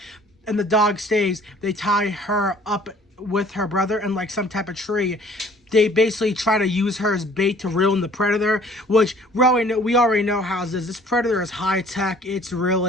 and the dog stays. They tie her up with her brother in like some type of tree. They basically try to use her as bait to reel in the Predator, which we already know how it is. This Predator is high tech. It's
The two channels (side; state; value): both; normal; correlation 0.54